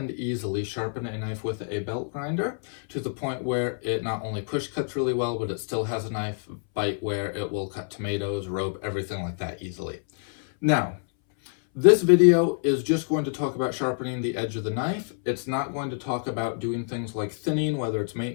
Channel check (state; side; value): silent; right; 60 dB below the other